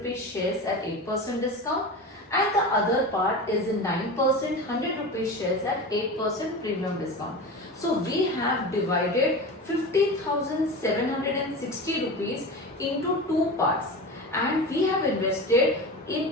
shares at 8% discount, and the other part is in 9% 100 rupees shares at 8% premium discount. So we have divided 50,760 rupees into two parts, and we have invested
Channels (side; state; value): both; normal; correlation 0.28